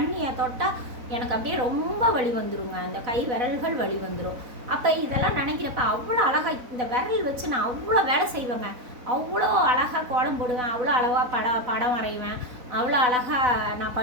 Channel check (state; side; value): late; left; 4.0 ms